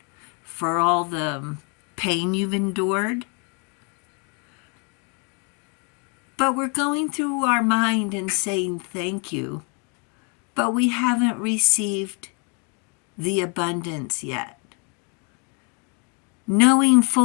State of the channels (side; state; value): right; quieter; 36.0 dB